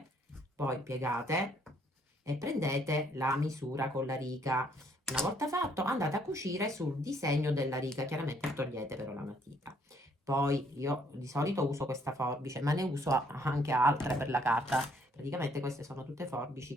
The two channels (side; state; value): both; normal; correlation 0.66